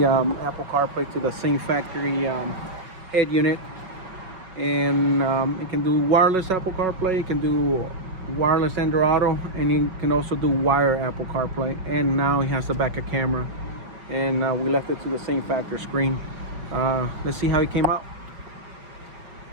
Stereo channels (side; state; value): left; late; 5.3 ms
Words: Apple CarPlay to the same factory head unit, and it can do wireless Apple CarPlay. It can do wireless Android Auto, and you can also do wire Apple CarPlay. And now he has the backup camera, and we left it to the same factory screen. Let's see how he came out.